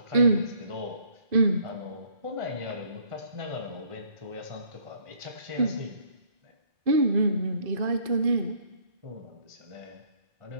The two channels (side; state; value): left; late; 2.5 ms